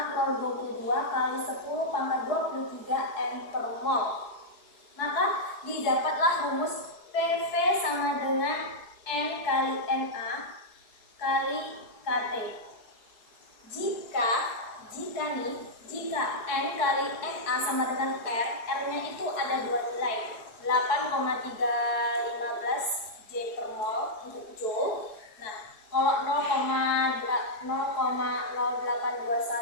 kali 10 pangkat 23 N per mol. Maka didapatlah rumus PV sama dengan N kali Na kali KT. Jika N kali Na sama dengan R, R-nya itu ada dua nilai, 8,315 J per mol untuk joule. Nah, kalau 0,0821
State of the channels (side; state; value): right; late; 4.8 ms